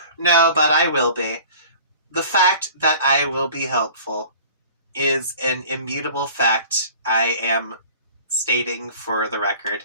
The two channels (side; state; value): both; inverted; correlation -0.45